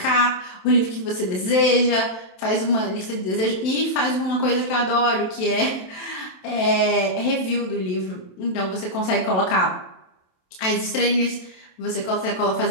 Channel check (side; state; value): right; late; 27 ms